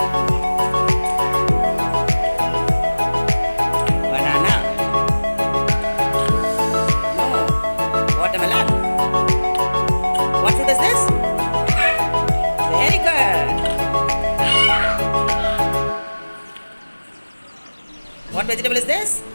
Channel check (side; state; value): both; inverted; correlation -1.00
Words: Banana. No. Watermelon. What fruit is this? Very good. What vegetable is this?